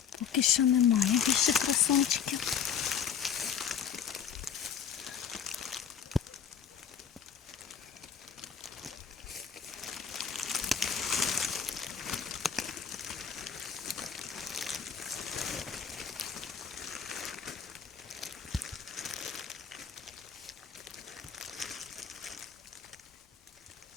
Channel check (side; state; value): right; quieter; 7.4 dB